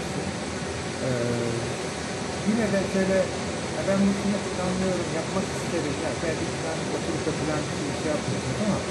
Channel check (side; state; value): both; identical; correlation 1.00